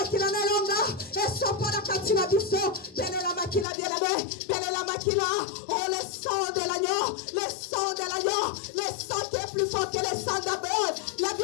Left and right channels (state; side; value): drops out; right; at 3.7 s